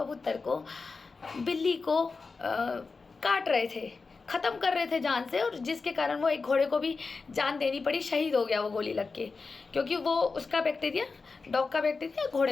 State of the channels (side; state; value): right; quieter; 4.3 dB